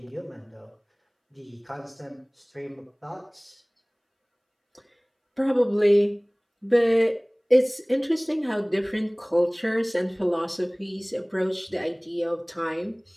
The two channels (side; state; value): both; identical; correlation 1.00